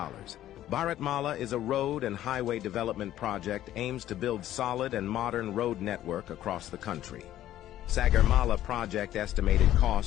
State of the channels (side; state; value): right; quieter; 12.9 dB